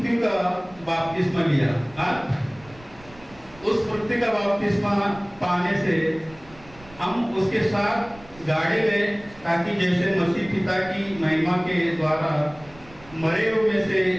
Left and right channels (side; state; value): right; noise; rumble, 22 dB below the sound